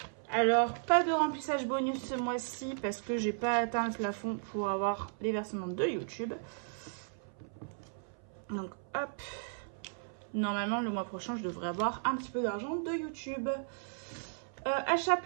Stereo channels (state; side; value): silent; left; 54 dB below the other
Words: Alors, pas de remplissage bonus ce mois-ci parce que j'ai pas atteint le plafond pour avoir les versements de YouTube. Donc, hop. Normalement, le mois prochain, je devrais avoir un petit peu d'argent de YouTube. Achat